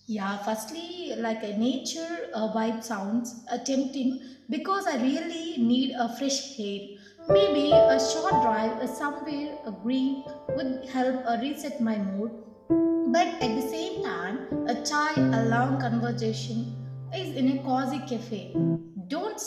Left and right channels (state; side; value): identical; both; correlation 1.00